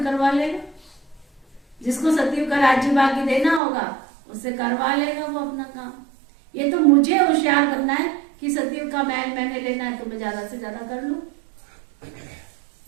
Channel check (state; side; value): drops out; left; at 3.6 s